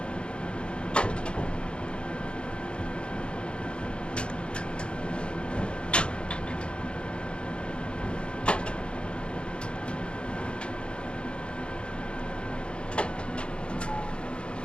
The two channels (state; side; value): late; right; 0.056 ms